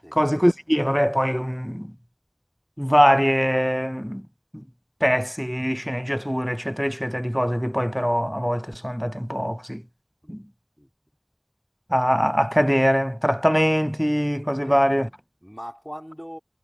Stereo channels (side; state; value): both; identical; correlation 1.00